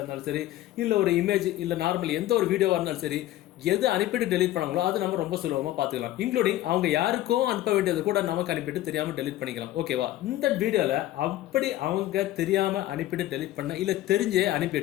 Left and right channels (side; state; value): right; quieter; 14.7 dB